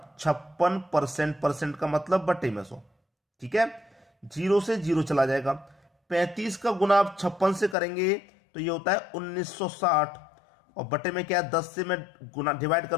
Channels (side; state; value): right; drops out; at 7.8 s